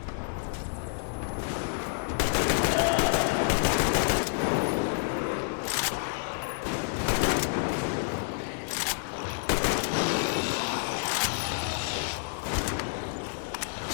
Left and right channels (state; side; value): silent; right; digital silence